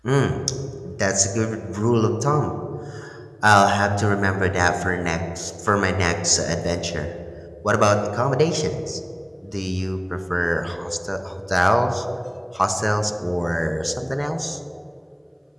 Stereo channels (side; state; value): both; identical; correlation 1.00